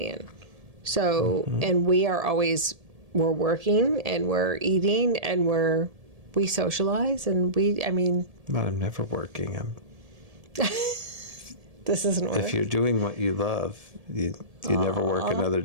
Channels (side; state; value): left; late; 1.7 ms